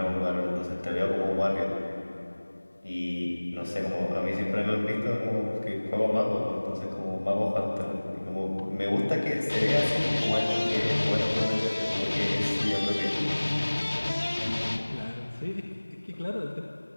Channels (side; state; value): both; inverted; correlation -1.00